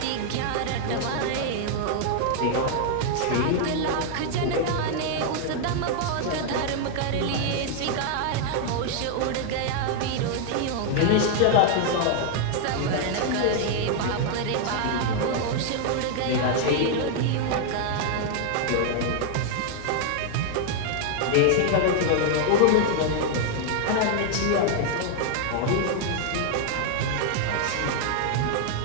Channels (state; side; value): different; both; correlation 0.00